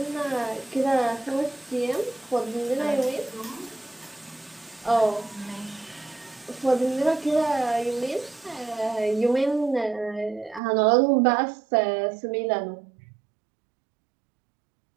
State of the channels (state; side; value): drops out; left; at 10.6 s